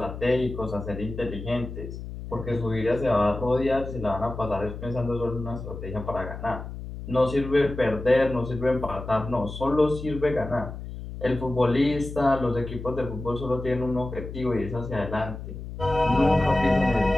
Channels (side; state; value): left; noise; hum, 10 dB below the sound